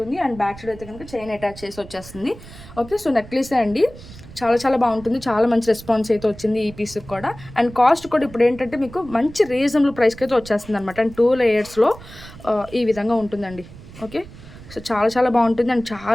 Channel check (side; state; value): right; noise; rumble, 17 dB below the sound